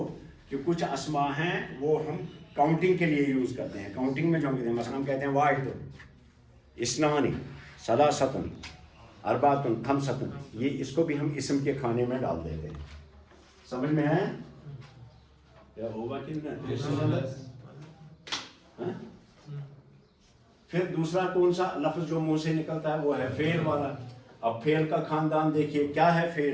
کہ کچھ اسماء ہیں وہ ہم کاؤنٹنگ کے لیے یوز کرتے ہیں. کاؤنٹنگ میں جو ہم کہتے ہیں، مثلا ہم کہتے ہیں واحد، اثنان، ثلاثۃ، اربعۃ، خمسۃ. یہ اس کو بھی ہم اسم کے کھانے میں ڈال دیتے ہیں. سمجھ میں ہے؟ کیا ہوگا کہ نہیں؟ پھر دوسرا کون سا لفظ جو منہ سے نکلتا ہے وہ ہے فعل والا. اب فعل کا خاندان دیکھیے کیا ہے.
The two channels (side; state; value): both; identical; correlation 1.00